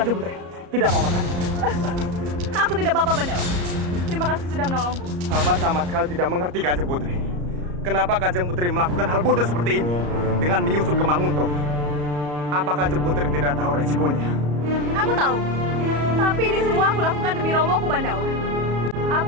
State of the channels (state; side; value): late; left; 34 ms